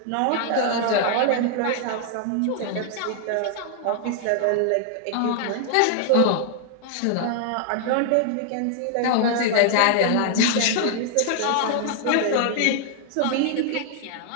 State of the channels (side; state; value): both; different; correlation 0.00